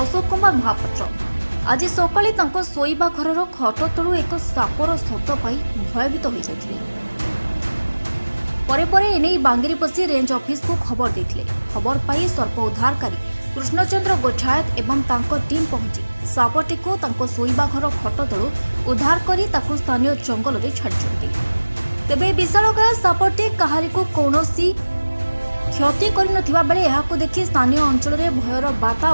अशोक कुमार महापात्र आज सकाळे तांको शोइबा घरर खट तलु एक सापर शब्द पाई भयभीत हो जाइथिले। परे परे एने बांगीरपोशी रेंज ऑफिस को खबर देथिले। खबर पाई सर्प उद्धारकारी कृष्णचंद्र गोठायत एवं तांको टीम पहुंची सापटी को तांको शोइबा घर खट तलु उद्धार करी ताकु स्थानीय जंगल रे छाडिछन्ती। तेबे विशालकाय सापटी काहारी को कौनसी क्षति करि नथिबा बेले एहाको देखि स्थानीय अंचल रे भयर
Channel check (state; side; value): inverted; both; correlation -1.00